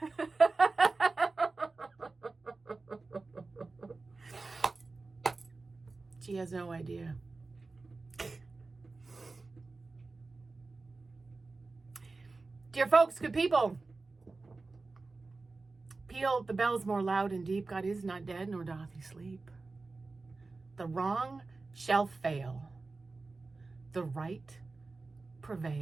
She has no idea. Dear folks, good people, peal the bells more loud and deep. God is not dead, nor doth he sleep. The wrong shall fail, the right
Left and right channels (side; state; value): left; quieter; 3.7 dB